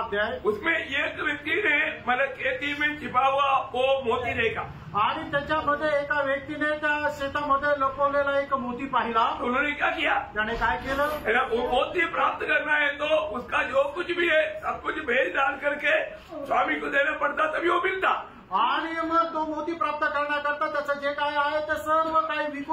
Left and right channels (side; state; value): both; identical; correlation 1.00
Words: अध्याय. उसमें एक व्यक्ती ने मतलब खेती में छिपा हुआ वो मोती देखा. आणि त्याच्यामध्ये एका व्यक्तीने त्या शेतामध्ये लपवलेला एक मोती पाहिला. उन्होंने क्या किया. त्याने काय केलं. वो मोती प्राप्त करना है तो उसका जो कुछ भी है सब कुछ भेज डाल करके स्वामी को देना पड़ता तभी वो मिलता. आणि मग तो मोती प्राप्त करण्याकरता त्याचं जे काय आहे ते सर्व काही